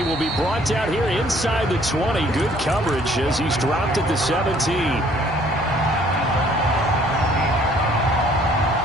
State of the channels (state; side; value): noise; left; hum, 14 dB below the sound